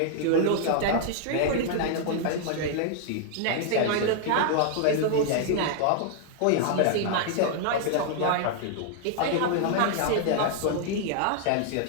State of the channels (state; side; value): different; both; correlation -0.01